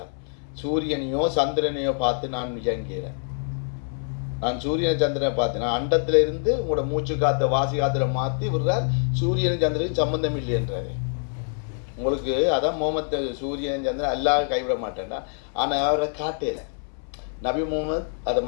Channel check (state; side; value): silent; right; 62 dB below the other